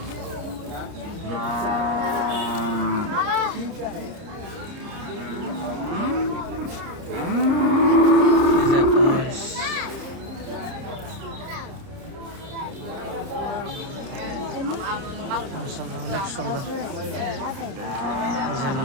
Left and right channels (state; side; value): late; left; 30 ms